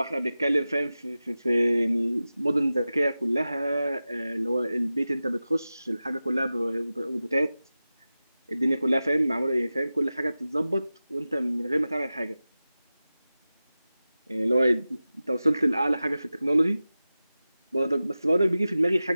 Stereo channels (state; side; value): inverted; both; correlation -0.95